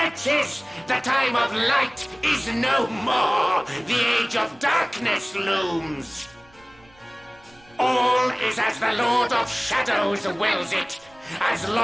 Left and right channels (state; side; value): noise; right; rumble, 29 dB below the sound